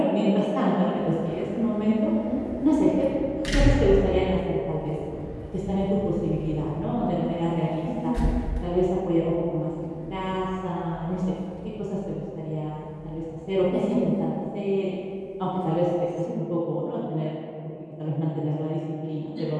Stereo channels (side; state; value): both; identical; correlation 1.00